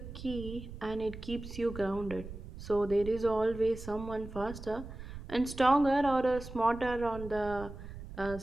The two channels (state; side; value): noise; right; rumble, 12 dB below the sound